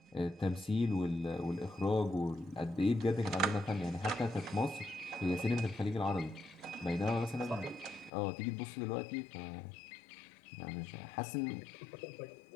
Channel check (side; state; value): right; drops out; at 8.1 s